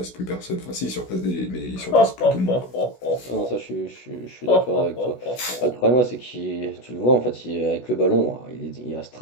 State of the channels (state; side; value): late; right; 16 ms